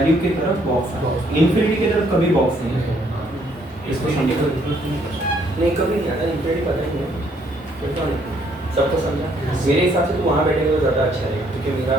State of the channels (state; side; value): normal; both; correlation 0.67